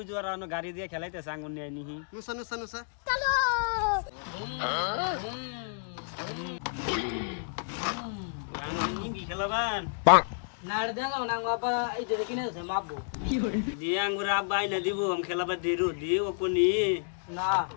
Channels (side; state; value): right; silent; digital silence